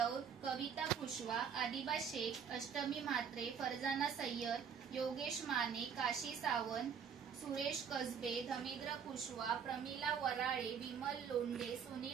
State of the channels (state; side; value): quieter; left; 7.2 dB